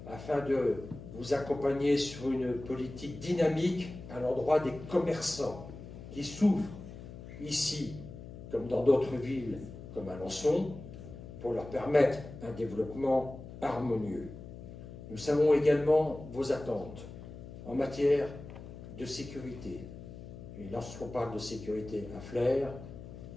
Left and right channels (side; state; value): left; noise; hum, 13 dB below the sound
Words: afin de vous accompagner sur une politique dynamique à l'endroit des commerçants qui souffrent ici, comme dans d'autres villes, comme Alençon, pour leur permettre un développement harmonieux. Nous savons également vos attentes en matière de sécurité. Et lorsqu'on parle de sécurité à Flers,